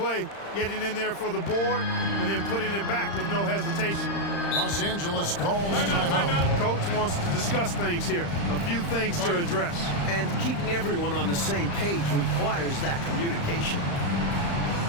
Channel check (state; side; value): late; right; 35 ms